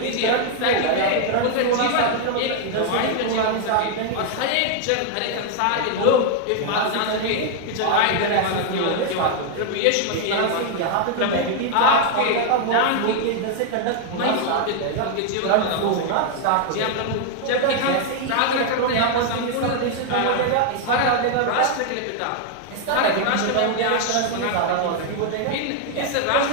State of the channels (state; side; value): different; both; correlation 0.00